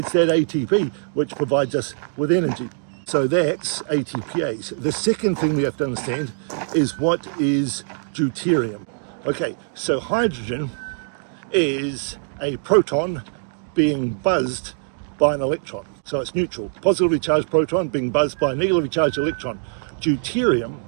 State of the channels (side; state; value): left; silent; digital silence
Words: that ATP which provides us with energy. So that's ATPase. The second thing we have to understand is what is deuterium. Okay, so hydrogen is a proton being buzzed by an electron. So it's neutral. Positively charged proton being buzzed by a negatively charged electron. Deuterium,